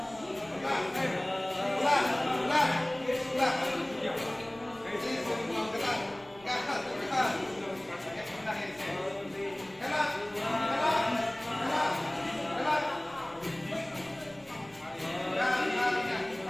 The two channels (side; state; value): right; noise; hum, 27 dB below the sound